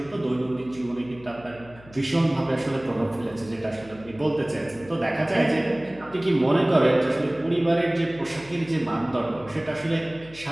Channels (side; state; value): left; noise; hum, 22 dB below the sound